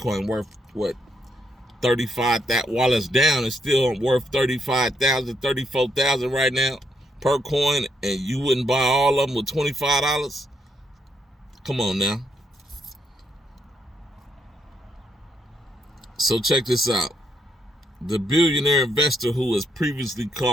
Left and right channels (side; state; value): both; normal; correlation 0.76